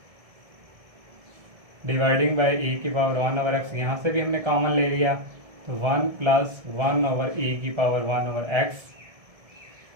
डिवाइडिंग बाई e⁻1/x, यहाँ से भी हमने कॉमन ले लिया। तो 1 + 1/e⁻1/x।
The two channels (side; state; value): left; late; 1.7 ms